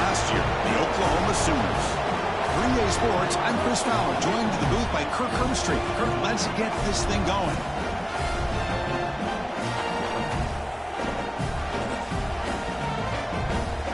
year, the Oklahoma Sooners. 3A Sports, I'm Chris Fowler, joined in the booth by Kirk Herbstreit. Kirk, let's get this thing going.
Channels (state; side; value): identical; both; correlation 1.00